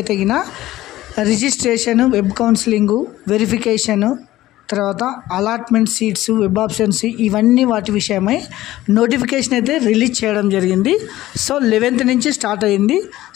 గిన registration, web counselling, verification, తర్వాత allotment seats, web options ఇవన్నీ వాటి విషయమై notification అయితే release చేయడం జరిగింది. So 11th నుంచి స్టార్ట్ అయ్యింది.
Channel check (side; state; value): right; quieter; 15.6 dB